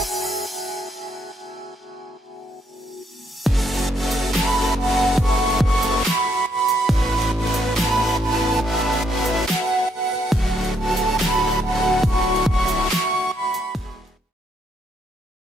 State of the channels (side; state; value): both; normal; correlation 0.74